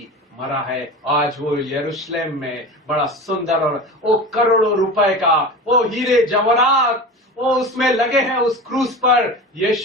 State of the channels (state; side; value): normal; both; correlation 0.31